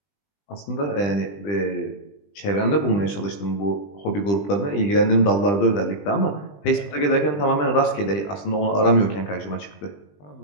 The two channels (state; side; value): late; right; 20 ms